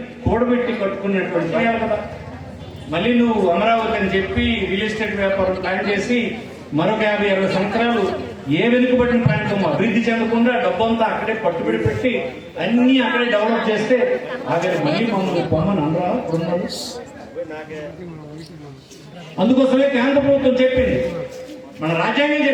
కూడబెట్టి కట్టుకున్నటువంటి కదా. మళ్ళీ నువ్వు అమరావతి అని చెప్పి రియల్ ఎస్టేట్ వ్యాపారం ప్లాన్ చేసి మరొక 50-60 సంవత్సరాలు ఏ వెనుకబడిన ప్రాంతం అభివృద్ధి చెందకుండా డబ్బంతా అక్కడే పట్టుబడి పెట్టి అన్ని అక్కడే డెవలప్ చేస్తే ఆఖరి మళ్ళీ మమ్మల్ని పొమ్మని అనరా ఉన్నాడు. అందుకోసమే కేంద్ర ప్రభుత్వం చెప్పింది, మన రాజ్యాంగం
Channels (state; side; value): identical; both; correlation 1.00